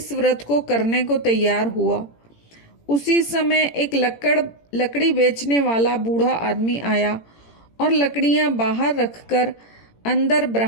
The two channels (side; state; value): right; late; 18 ms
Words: व्रत को करने को तैयार हुआ। उसी समय एक लकड़ी बेचने वाला बूढ़ा आदमी आया और लकड़ियां बाहर रखकर अंदर